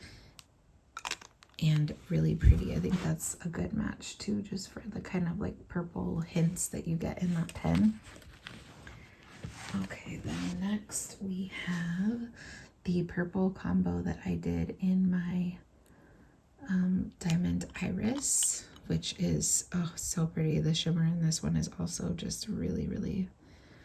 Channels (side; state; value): both; identical; correlation 1.00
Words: and really pretty. I think that's a good match too, just for the kind of like purple hints that you get in that pen. Okay, then next we have the the purple combo that I did in my Diamond Iris, which is so pretty. The shimmer in this one is also just really, really